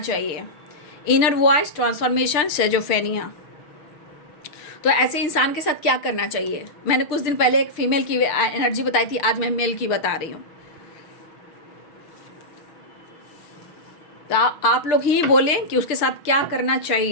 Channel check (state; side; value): late; right; 6.3 ms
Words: Inner voice transformation schizophrenia. तो ऐसे इंसान के साथ क्या करना चाहिए। मैंने कुछ दिन पहले एक फीमेल की एनर्जी बताई थी, आज मैं मेल की बता रही हूँ। तो आप लोग ही बोलें कि उसके साथ क्या करना